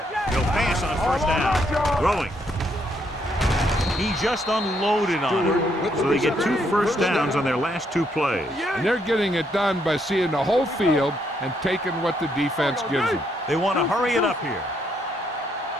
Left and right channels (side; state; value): both; normal; correlation 0.74